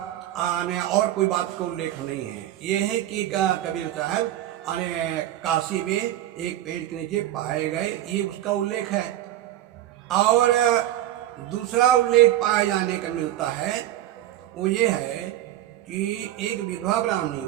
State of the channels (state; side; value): quieter; left; 13.3 dB